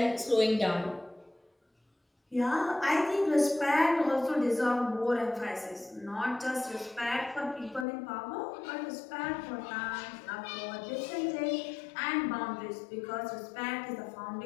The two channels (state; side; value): drops out; right; at 7.9 s